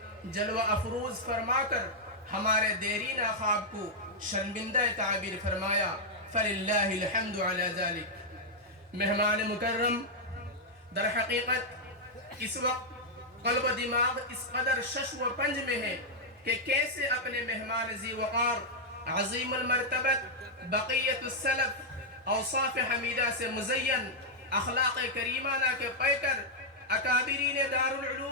جلوہ افروز فرما کر ہمارے دیرینہ خواب کو شرمندہ تعبیر فرمایا. فللہ الحمد علی ذلک. مہمان مکرم، در حقیقت اس وقت قلب و دماغ اس قدر شش و پنج میں ہے کہ کیسے اپنے مہمان ذی وقار عظیم المرتبت بقیت السلف اوصاف حمیدہ سے مزین اخلاق کریمانہ کے پیکر اکابرین دار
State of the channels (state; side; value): normal; both; correlation -0.05